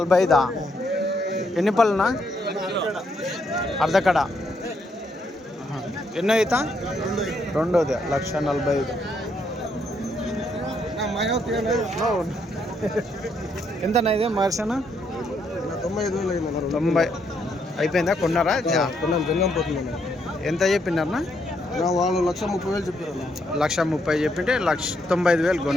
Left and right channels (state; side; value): normal; both; correlation 0.75